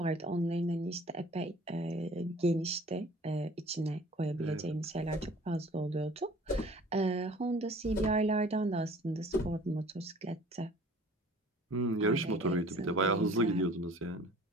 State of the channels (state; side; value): normal; both; correlation 0.49